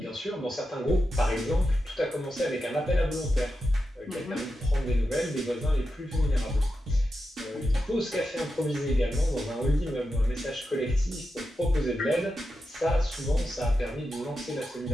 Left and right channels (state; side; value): normal; both; correlation 0.89